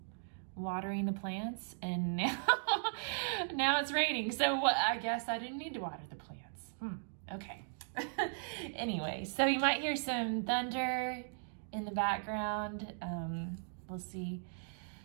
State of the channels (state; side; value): silent; left; digital silence